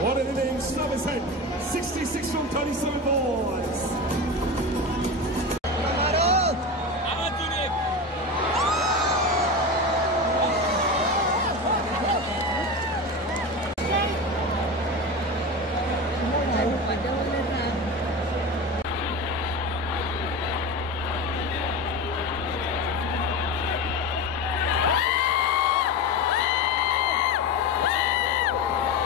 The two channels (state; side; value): normal; both; correlation 0.24